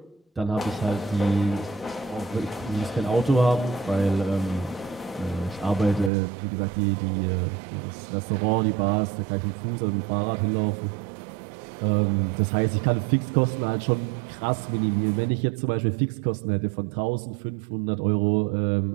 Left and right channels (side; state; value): left; drops out; at 6.1 s